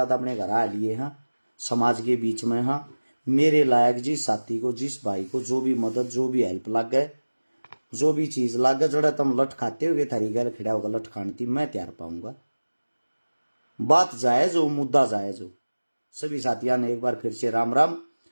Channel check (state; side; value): inverted; both; correlation -1.00